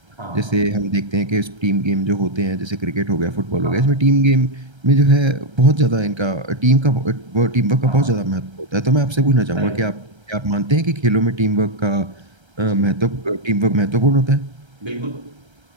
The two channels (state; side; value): late; left; 1.3 ms